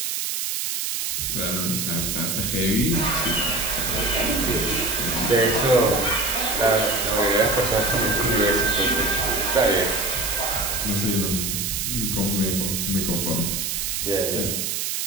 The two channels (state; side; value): noise; right; hiss, 1 dB below the sound